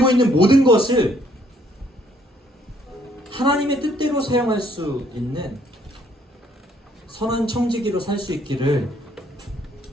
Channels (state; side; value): normal; both; correlation 0.66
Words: 있는 모든 것을 하나님의 뜻대로 사용할 수 있는 선한 청지기로 살 수 있기를